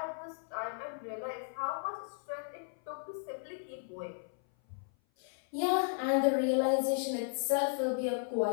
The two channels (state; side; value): silent; right; 54 dB below the other